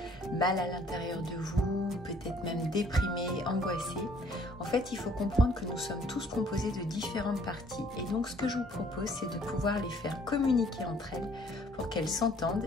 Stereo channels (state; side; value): normal; both; correlation 0.59